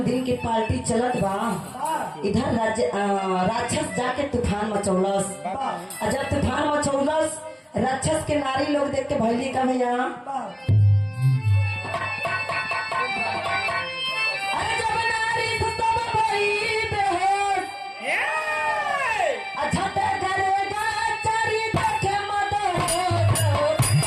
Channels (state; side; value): identical; both; correlation 1.00